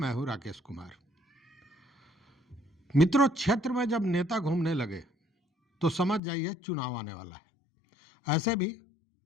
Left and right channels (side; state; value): right; drops out; at 6.2 s